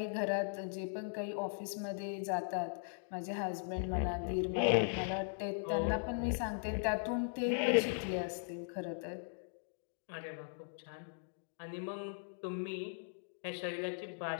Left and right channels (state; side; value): silent; right; digital silence